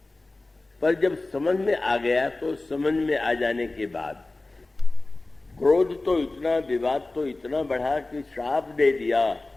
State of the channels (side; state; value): right; quieter; 3.0 dB